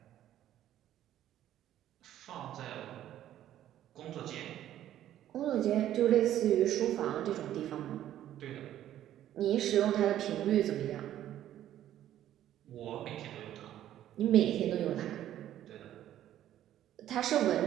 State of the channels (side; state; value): left; quieter; 12.1 dB